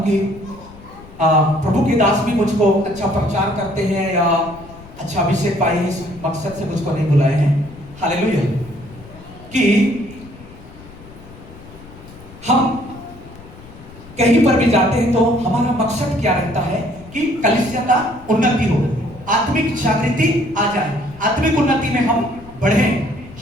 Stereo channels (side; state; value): left; noise; rumble, 20 dB below the sound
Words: कि प्रभु के दास भी मुझको अच्छा प्रचार करते हैं या अच्छा अभिषेक पाए हैं, इस मकसद से मुझको नहीं बुलाए हैं। हालेलुया। कि हम कहीं पर भी जाते हैं तो हमारा मकसद क्या रहता है कि कलीसिया का उन्नति हो, आत्मिक जागृति आ जाए, आत्मिक उन्नति में हम बढ़े,